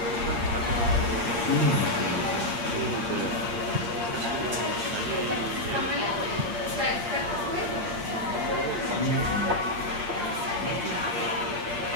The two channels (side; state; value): left; late; 8.6 ms